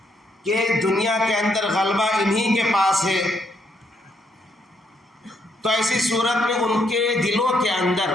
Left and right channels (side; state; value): both; normal; correlation 0.74